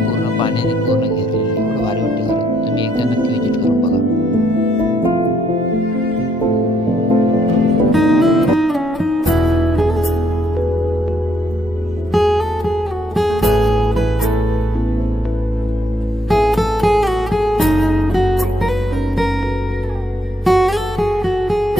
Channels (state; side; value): normal; both; correlation 0.72